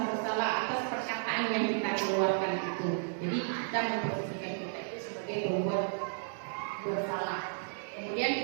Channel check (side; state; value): left; silent; digital silence